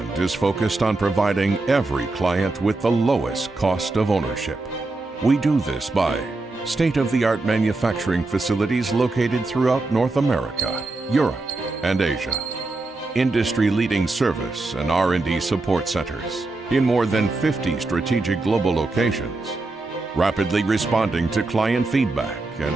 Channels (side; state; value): left; quieter; 3.2 dB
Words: is focused on providing every client with the lowest cost of ownership. We do this by state-of-the-art manufacturing facilities located throughout North America, Europe, and Asia. Industry-leading service and R&D support centers in more than 50 strategic global locations, rapidly responding to client feedback